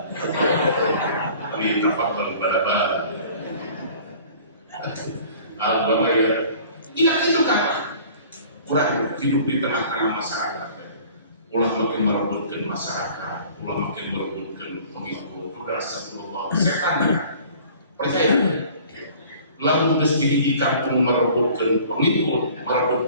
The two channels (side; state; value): both; inverted; correlation -0.49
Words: ini tafadhal bala-bala agama ya tidak itu kan kurang hidup di tengah-tengah masyarakat ulah makin merebutkan masyarakat, ulah makin merebutkan pengikut, udah astagfirullah, setan ya, percaya? Lalu mesti di kampung merebutkan pengikut,